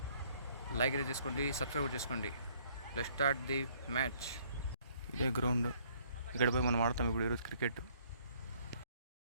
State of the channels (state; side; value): inverted; both; correlation -0.62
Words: లైక్ అయితే చేసుకోండి, సబ్స్క్రైబ్ చేసుకోండి. Let's start the match. ఇదే గ్రౌండ్, ఇక్కడ పోయి మనం ఆడతాం ఇప్పుడు ఈరోజు క్రికెట్.